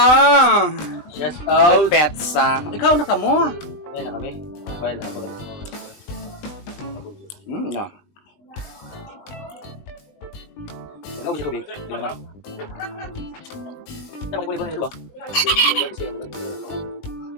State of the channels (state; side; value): late; right; 20 ms